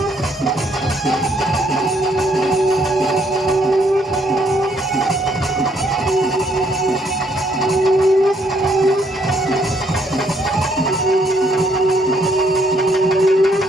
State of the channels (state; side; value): normal; both; correlation 0.69